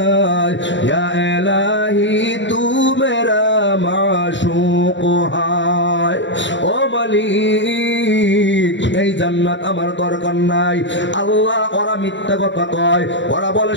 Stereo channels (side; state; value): right; late; 0.54 ms